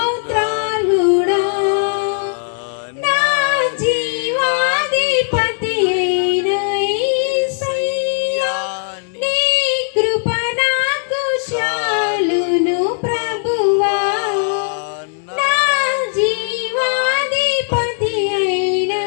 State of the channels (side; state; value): right; silent; 68 dB below the other